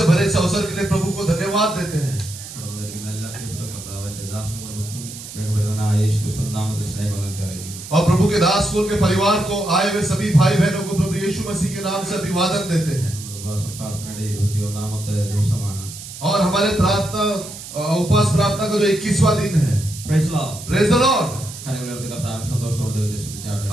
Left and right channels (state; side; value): noise; right; hiss, 12 dB below the sound